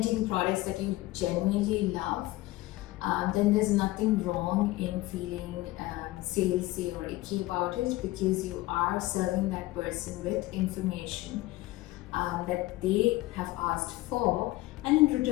products that you genuinely love. Then there's nothing wrong in feeling salesy or icky about it, because you are serving that person with information that they have asked for, and in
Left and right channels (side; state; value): right; quieter; 18.3 dB